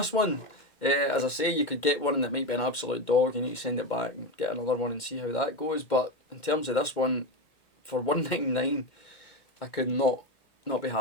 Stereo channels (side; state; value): right; late; 2.2 ms